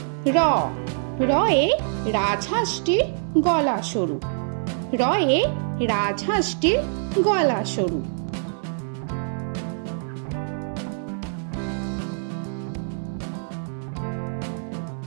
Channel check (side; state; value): left; silent; 62 dB below the other